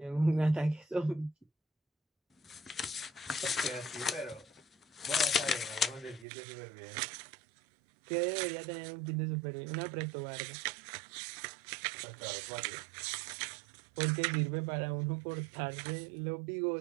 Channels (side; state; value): left; drops out; at 6.2 s